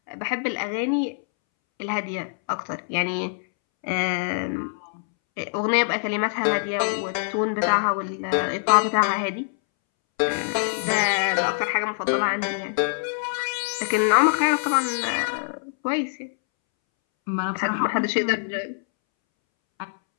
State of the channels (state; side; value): silent; right; 62 dB below the other